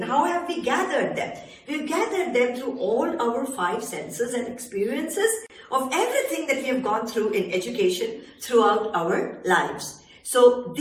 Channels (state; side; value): identical; both; correlation 1.00